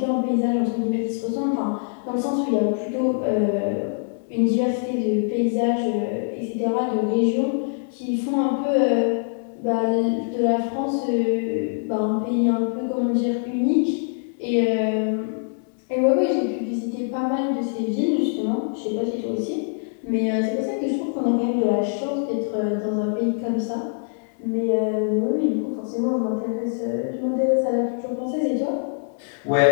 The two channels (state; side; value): silent; right; 63 dB below the other